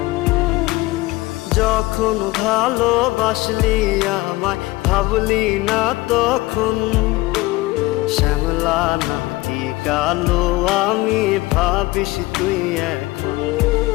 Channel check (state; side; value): quieter; right; 20.3 dB